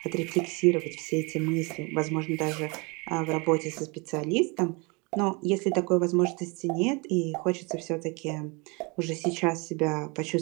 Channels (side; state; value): left; quieter; 28.8 dB